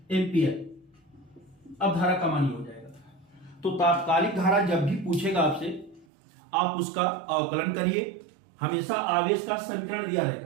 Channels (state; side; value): drops out; left; at 6.1 s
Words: एम्पियर। अब धारा का मान हो जाएगा। तो तात्कालिक धारा जब भी पूछेगा आपसे आप उसका अवकलन करिए। हमेशा आवेश का समीकरण दिया